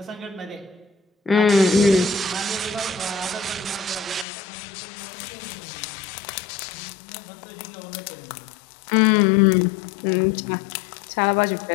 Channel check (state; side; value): drops out; right; at 4.2 s